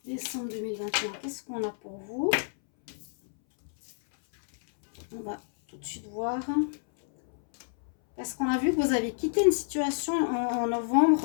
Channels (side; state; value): right; silent; 59 dB below the other